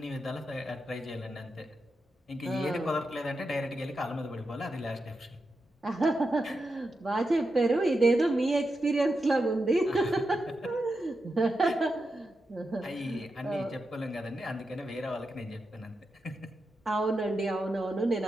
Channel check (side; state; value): both; normal; correlation 0.88